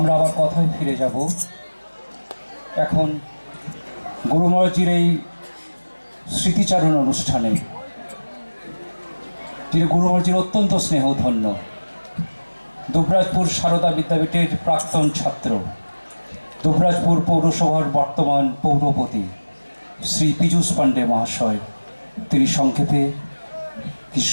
আবার কথায় ফিরে যাব। এখন গুরু মহারাজের এই স্মৃতিচারণ অনুষ্ঠানে তিনি গুরু মহারাজের অত্যন্ত স্নেহধন্য দুবরাজপুর সারদা বিদ্যাপীঠের প্রাক্তন ছাত্র, দুবরাজপুর পৌরসভার বর্তমান পৌরপতি শ্রী পীযূষ পাণ্ডে মহাশয় তিনি সংক্ষেপে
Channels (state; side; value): inverted; both; correlation -1.00